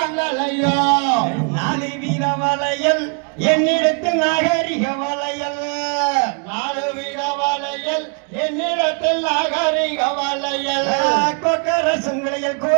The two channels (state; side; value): quieter; left; 34.8 dB